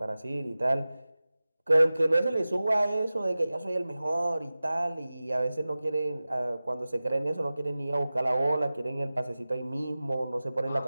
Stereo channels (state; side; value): inverted; both; correlation -0.97